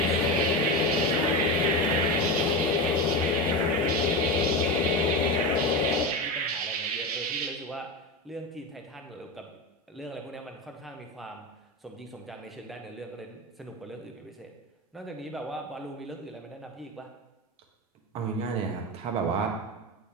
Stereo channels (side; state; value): both; normal; correlation 0.20